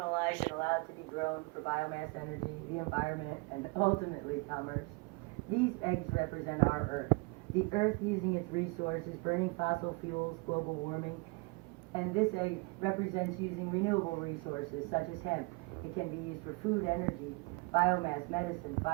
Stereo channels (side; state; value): left; quieter; 28.1 dB